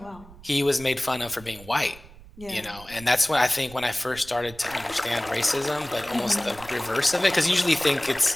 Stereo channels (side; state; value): right; noise; rumble, 20 dB below the sound